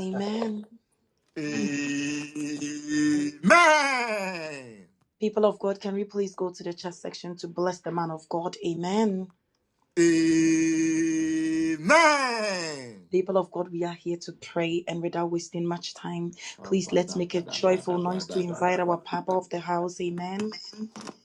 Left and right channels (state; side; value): identical; both; correlation 1.00